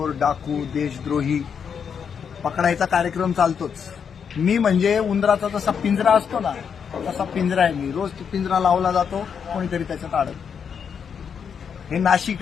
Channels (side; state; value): right; quieter; 7.0 dB